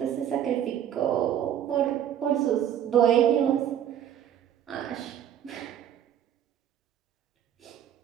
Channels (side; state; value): left; quieter; 10.2 dB